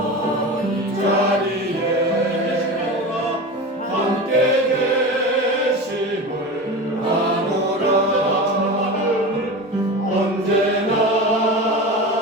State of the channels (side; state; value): both; normal; correlation 0.28